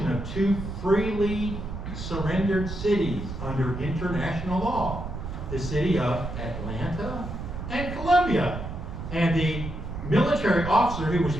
of 2 freely surrendered cities under international law. The city of Atlanta and Columbia. And the military officer who was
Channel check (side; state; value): right; noise; rumble, 7 dB below the sound